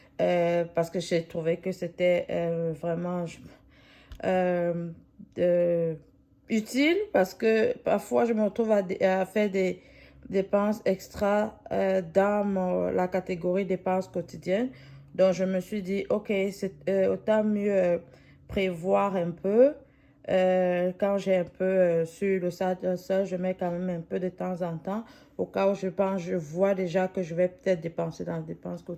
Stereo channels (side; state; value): both; identical; correlation 1.00